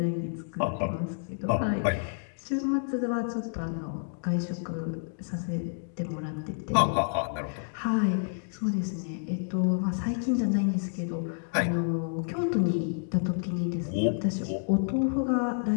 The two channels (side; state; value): right; silent; digital silence